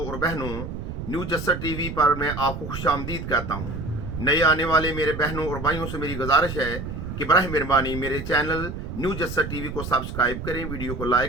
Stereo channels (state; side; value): noise; right; rumble, 7 dB below the sound